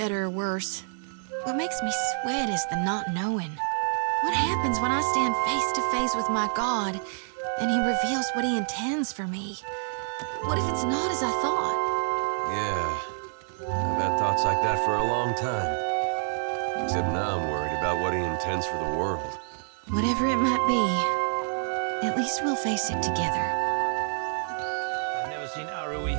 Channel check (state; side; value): silent; left; digital silence